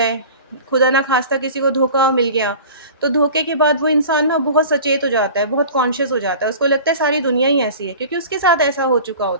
खुदा ना ख़ास्ता किसी को धोखा मिल गया, तो धोखे के बाद वो इंसान ना बहुत सचेत हो जाता है, बहुत कॉन्शियस हो जाता है। उसको लगता है सारी दुनिया ही ऐसी है क्योंकि उसके साथ ऐसा हो चुका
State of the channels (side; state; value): both; inverted; correlation -0.40